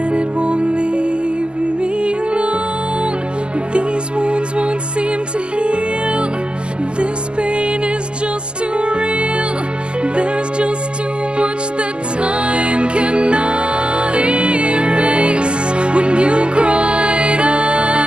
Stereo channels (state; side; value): late; left; 0.050 ms